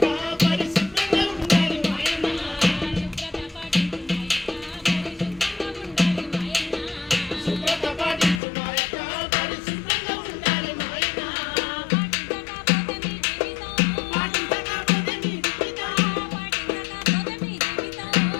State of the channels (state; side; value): drops out; right; at 8.4 s